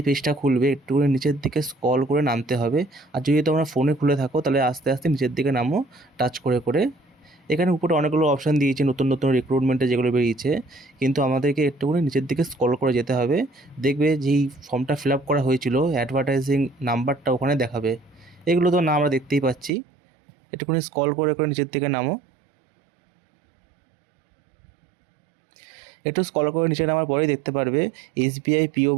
পেজটা খুলবে একটুখানি নিচের দিকে স্ক্রল করে নামতে হবে। আর যদি তোমরা ফোনে খুলে থাকো তাহলে আস্তে আস্তে নিচের দিকে নামো টাচ করে করে। এখানে উপরে অনেকগুলো অপশান দিয়েছে নতুন নতুন রিক্রুটমেন্টে যেগুলো বেরিয়েছে, কিন্তু আমাদেরকে একটুখানি নিচের দিকে স্ক্রল করে যেতে হবে। দেখবে যেই ফর্মটা ফিল আপ করা হয়েছিল অ্যাডভার্টাইজিং নাম্বারটা ওখানে দেখাবে। এগুলো তো না আমরা দেখতেই পাচ্ছি। একটুখানি স্ক্রল করে করে নিচের দিকে নামো। একটু স্ক্রল করে নিচে নামার পরেই দেখতে পারবে এসবিআই পিও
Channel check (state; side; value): drops out; left; at 19.7 s